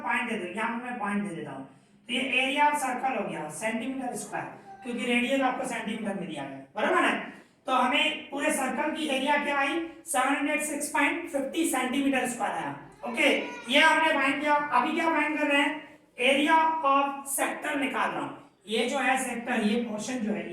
पॉइंट दे दो, यहां पे मैं पॉइंट दे देता हूं, तो ये एरिया ऑफ सर्कल हो गया सेंटीमीटर स्क्वायर, क्योंकि रेडियस आपको सेंटीमीटर में दिया गया, बराबर है। तो हमें पूरे सर्कल की एरिया क्या आई, 706.50 सेंटीमीटर स्क्वायर आया। ओके, ये हमने फाइंड किया। अभी क्या फाइंड कर रहे हैं, एरिया ऑफ सेक्टर निकाल रहा हूं, ये जो है सेक्टर, ये पोर्शन जो है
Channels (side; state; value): both; identical; correlation 1.00